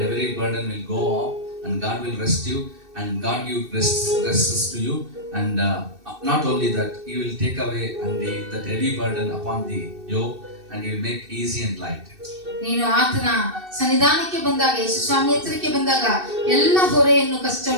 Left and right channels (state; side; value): late; left; 2.6 ms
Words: every burden will go off and God will rest you and God give rests to you, and not only that, He will take away that heavy burden upon the yoke, and He will make easy and light. ನೀನು ಆತನ ಸನ್ನಿಧಾನಕ್ಕೆ ಬಂದಾಗ, ಯೇಸು ಸ್ವಾಮಿ ಹತ್ತಿರಕ್ಕೆ ಬಂದಾಗ ಎಲ್ಲ ಹೊರೆಯನ್ನು,